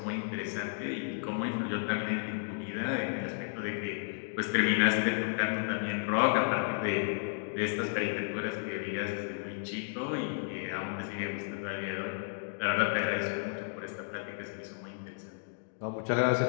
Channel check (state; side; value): silent; right; digital silence